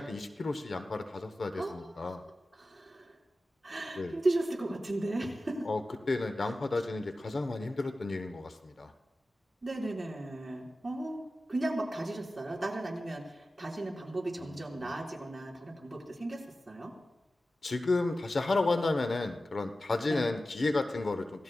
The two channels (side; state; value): both; normal; correlation 0.94